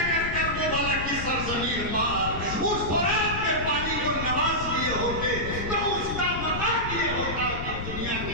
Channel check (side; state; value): left; noise; rumble, 6 dB below the sound